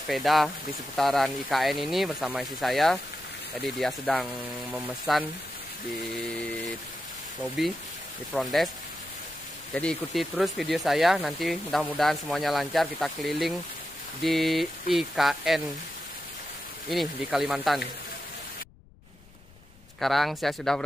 di seputaran IKN ini bersama istri saya. Jadi dia sedang memesan di lobby, di front desk. Jadi ikuti terus video saya, nanti mudah-mudahan semuanya lancar. Kita keliling di IKN ini di Kalimantan. Sekarang saya sudah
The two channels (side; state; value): left; noise; rumble, 24 dB below the sound